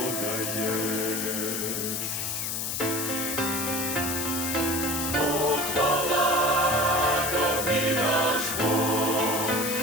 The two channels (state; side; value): noise; left; hiss, 2 dB below the sound